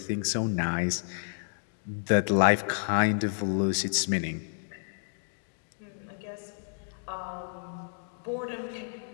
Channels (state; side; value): silent; right; digital silence